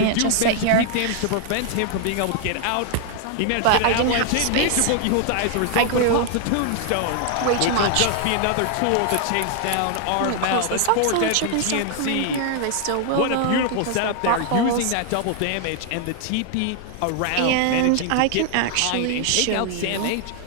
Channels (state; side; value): different; both; correlation 0.00